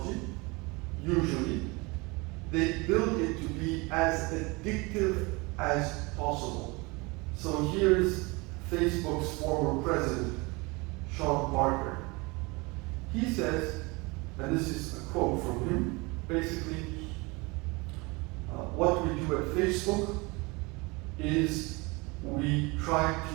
usually, they build it to be as addictive as possible. So here's Facebook's former president, Sean Parker. He says, and this is a quote from him, basically, what we do at Facebook is we try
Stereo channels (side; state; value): left; quieter; 26.1 dB